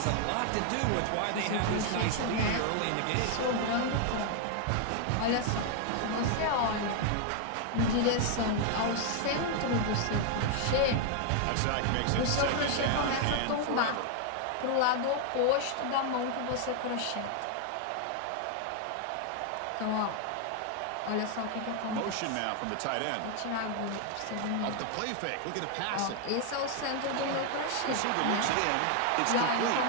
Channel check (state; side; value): different; both; correlation 0.00